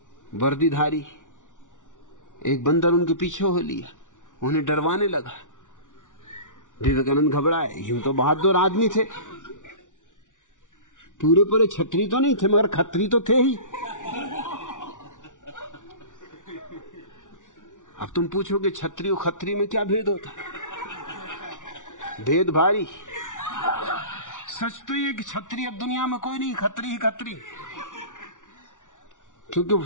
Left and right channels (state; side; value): late; right; 0.87 ms